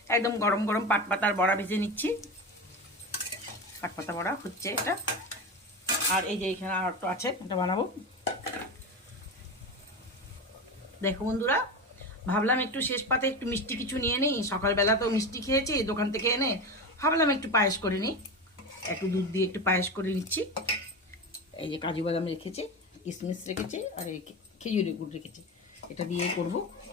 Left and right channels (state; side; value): normal; both; correlation 0.23